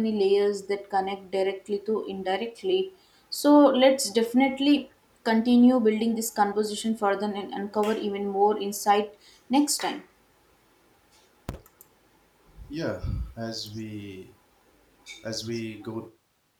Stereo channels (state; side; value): identical; both; correlation 1.00